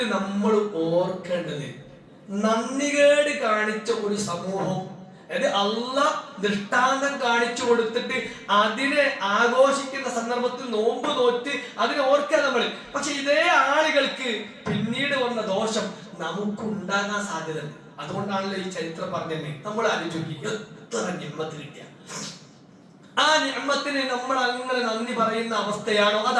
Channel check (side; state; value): both; identical; correlation 1.00